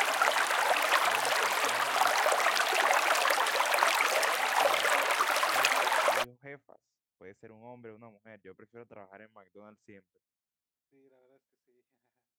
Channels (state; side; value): identical; both; correlation 1.00